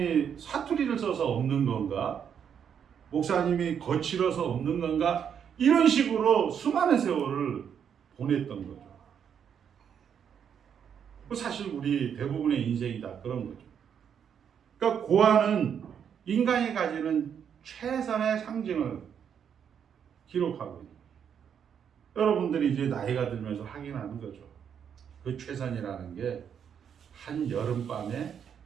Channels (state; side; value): quieter; left; 8.0 dB